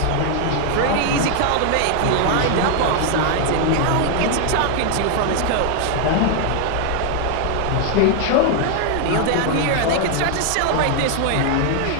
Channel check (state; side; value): different; both; correlation 0.00